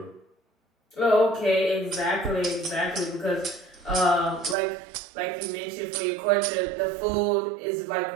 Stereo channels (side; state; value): left; drops out; at 4.5 s